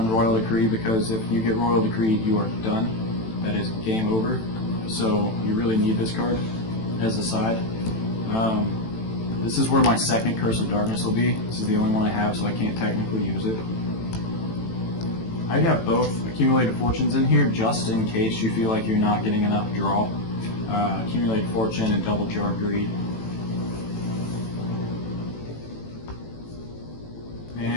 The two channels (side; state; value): right; late; 18 ms